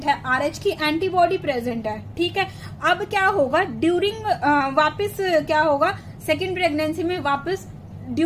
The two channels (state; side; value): identical; both; correlation 1.00